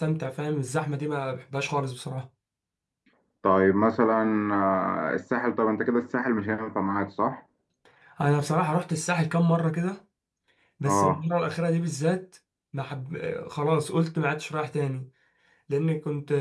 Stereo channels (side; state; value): both; identical; correlation 1.00